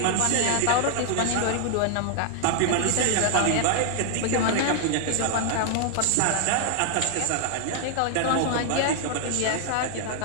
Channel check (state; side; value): different; both; correlation 0.00